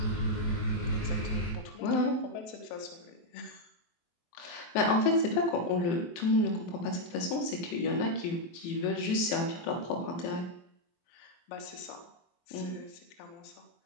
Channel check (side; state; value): right; late; 23 ms